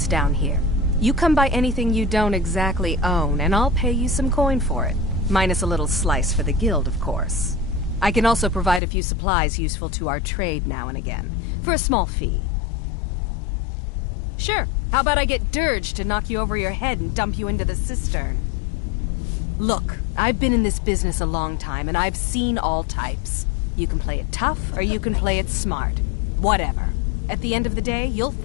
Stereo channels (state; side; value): drops out; right; at 8.8 s